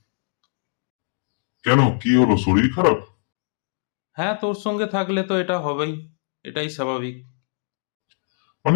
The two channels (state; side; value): silent; right; digital silence